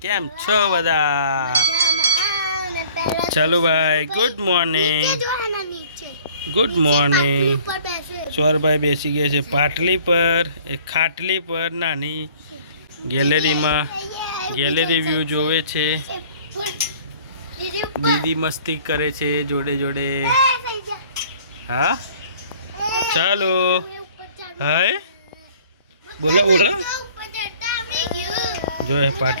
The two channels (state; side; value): inverted; both; correlation -0.53